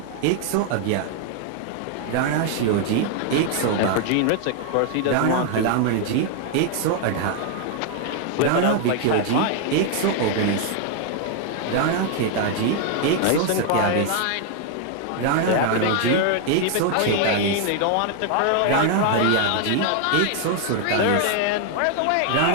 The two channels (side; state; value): both; different; correlation 0.00